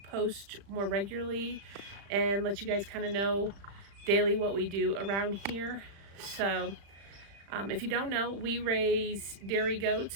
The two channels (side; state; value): left; late; 36 ms